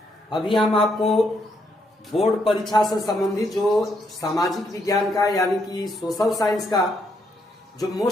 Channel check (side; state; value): both; normal; correlation 0.76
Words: अभी हम आपको बोर्ड परीक्षा से संबंधित जो सामाजिक विज्ञान का यानी कि सोशल साइंस का जो